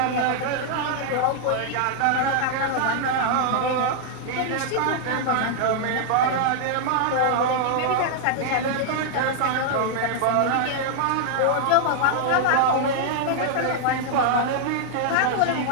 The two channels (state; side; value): different; both; correlation -0.01